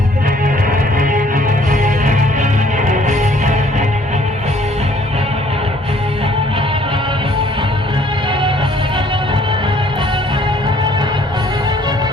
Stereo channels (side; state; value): both; normal; correlation 0.60